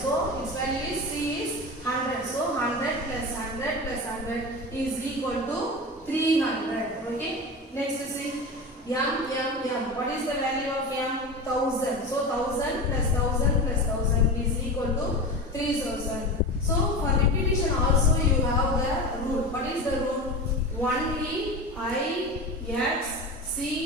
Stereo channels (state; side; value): normal; both; correlation 0.27